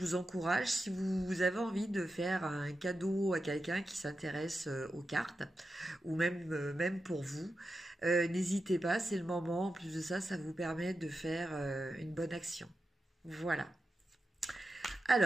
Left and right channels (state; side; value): normal; both; correlation 0.90